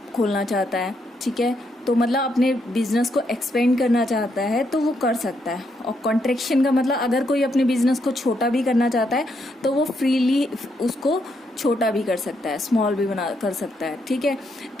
खोलना चाहता है, ठीक है, तो मतलब अपने बिजनेस को एक्सपेंड करना चाहता है तो वो कर सकता है। और कॉन्ट्रैक्शन का मतलब अगर कोई अपने बिजनेस को छोटा भी करना चाहता है तो वो फ्रीली उसको छोटा भी कर सकता है, स्मॉल भी कर सकता है, ठीक है।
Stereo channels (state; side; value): normal; both; correlation 0.77